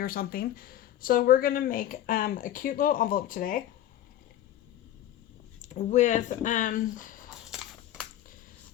something. So we're gonna make a cute little envelope today with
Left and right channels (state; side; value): quieter; right; 12.3 dB